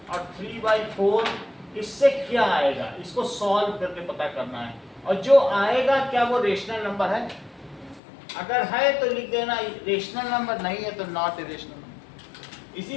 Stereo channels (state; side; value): drops out; right; at 8.0 s